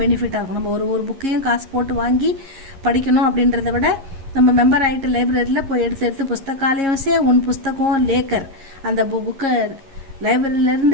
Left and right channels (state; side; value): late; left; 11 ms